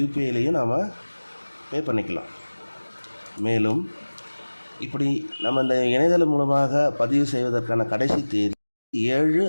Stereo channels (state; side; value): inverted; both; correlation -1.00